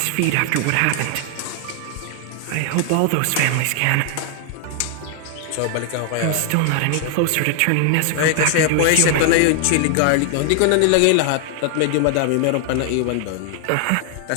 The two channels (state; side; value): different; both; correlation 0.00